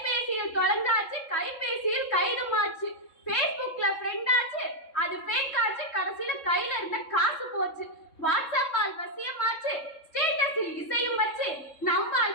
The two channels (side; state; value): right; late; 3.7 ms